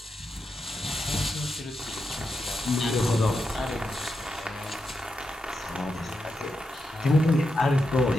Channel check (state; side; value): normal; both; correlation 0.86